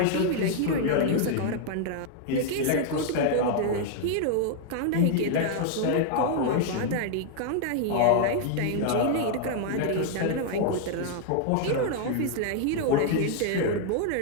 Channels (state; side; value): different; both; correlation 0.00